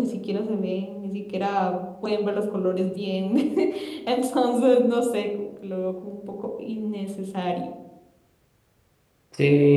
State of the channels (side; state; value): both; identical; correlation 1.00